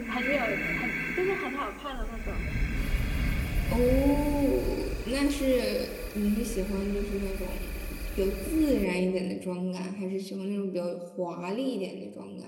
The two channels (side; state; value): both; identical; correlation 1.00